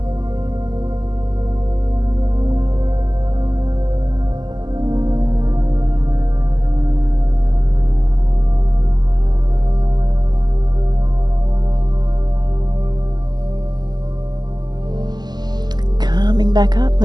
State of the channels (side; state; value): left; late; 0.20 ms